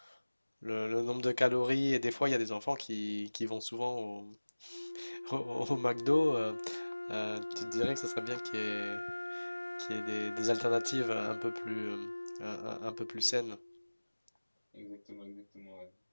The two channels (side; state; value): both; inverted; correlation -1.00